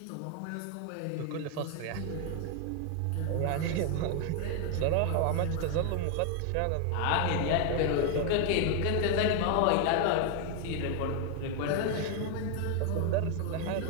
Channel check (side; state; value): both; different; correlation 0.01